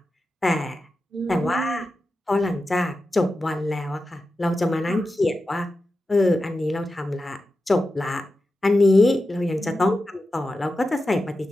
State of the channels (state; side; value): normal; both; correlation 0.92